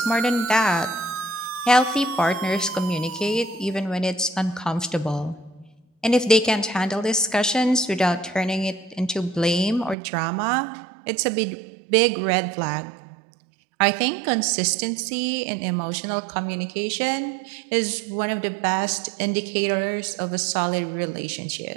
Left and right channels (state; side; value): drops out; left; at 10.0 s